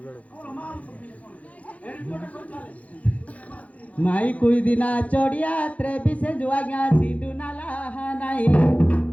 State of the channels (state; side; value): late; right; 0.067 ms